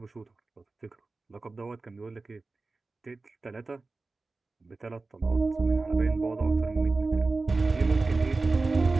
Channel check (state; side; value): quieter; left; 3.6 dB